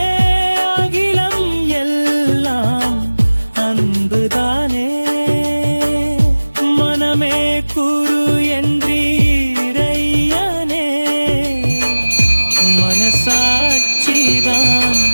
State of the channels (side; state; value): both; inverted; correlation -1.00